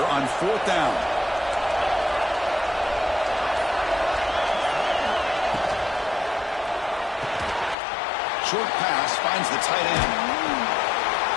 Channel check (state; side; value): drops out; right; at 7.8 s